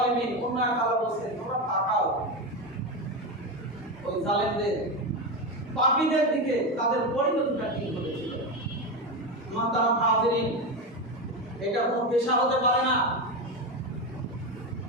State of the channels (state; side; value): normal; both; correlation 0.15